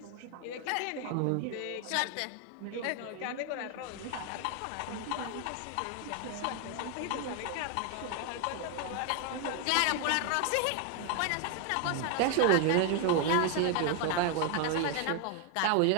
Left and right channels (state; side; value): different; both; correlation 0.00